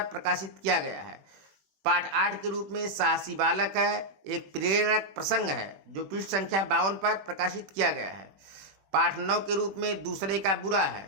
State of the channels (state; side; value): late; left; 21 ms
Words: प्रकाशित किया गया है। पाठ 8 के रूप में साहसी बालक है एक प्रेरक प्रसंग है, जो पृष्ठ संख्या 52 पर प्रकाशित किया गया है। पाठ 9 के रूप में दूसरे का बुरा